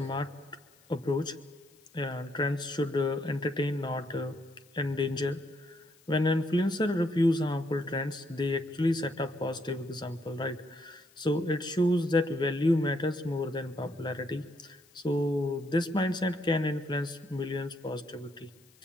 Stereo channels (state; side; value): noise; left; hiss, 30 dB below the sound